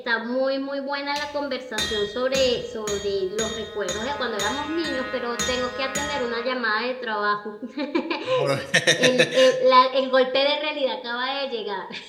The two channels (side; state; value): both; identical; correlation 1.00